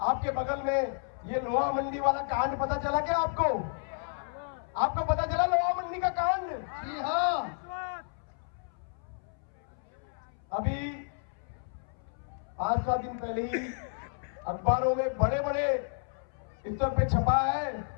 आपके बगल में ये लोहा मंडी वाला कांड पता चला क्या आपको? आपको पता चला लोहा मंडी का कांड? जी हाँ। अभी 5-7 दिन पहले ही अखबारों में बड़े बड़े स्तर पे छपा है,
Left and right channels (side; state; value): right; silent; 57 dB below the other